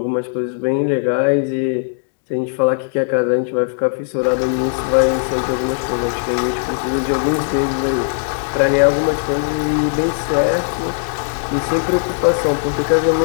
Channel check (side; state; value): right; silent; digital silence